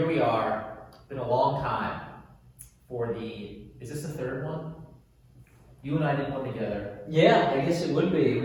we are. It's been a long time for is this the third one? You and I did one together. Yeah, I guess it would be.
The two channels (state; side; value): identical; both; correlation 1.00